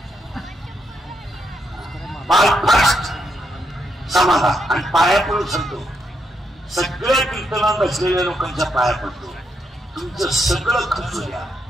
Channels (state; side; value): normal; both; correlation 0.80